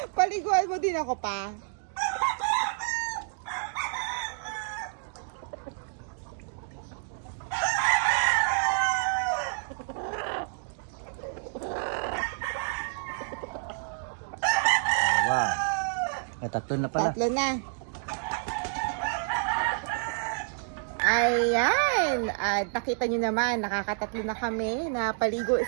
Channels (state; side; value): silent; left; digital silence